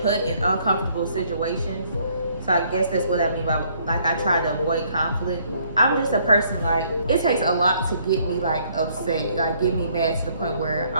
in uncomfortable situations. So I guess that's what I mean by like I try to avoid conflict. I'm just a person like it takes a lot to get me like upset, like get me mad to the point where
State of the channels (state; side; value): inverted; both; correlation -0.65